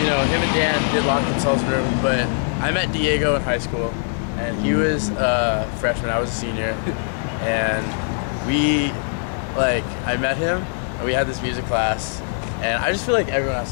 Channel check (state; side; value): silent; right; digital silence